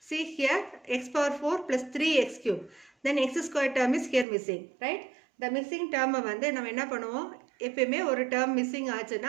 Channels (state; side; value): drops out; left; at 4.2 s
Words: See here x power 4 plus 3x cube. Then x squared term is here missing, right? The missing term வந்து நம்ம என்ன பண்ணுவோம்? எப்பவுமே ஒரு term missing